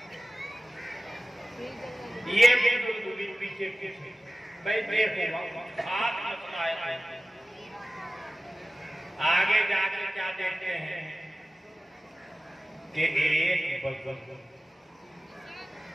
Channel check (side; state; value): both; normal; correlation 0.95